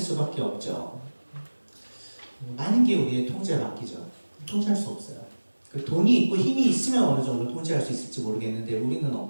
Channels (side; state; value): both; inverted; correlation -1.00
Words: 없죠. 많은 게 우리의 통제에 맡기죠. 통제할 수 없어요. 그 돈이 있고 힘이 있으면 어느 정도 통제할 수 있을지 모르겠는데 우리는